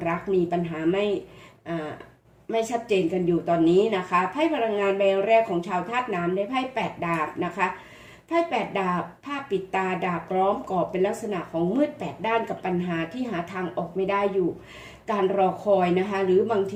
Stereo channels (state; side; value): identical; both; correlation 1.00